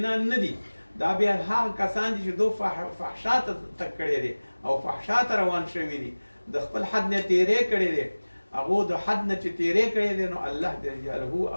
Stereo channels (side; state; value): both; inverted; correlation -1.00